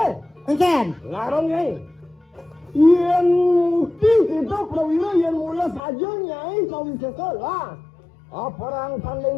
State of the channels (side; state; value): right; drops out; at 5.8 s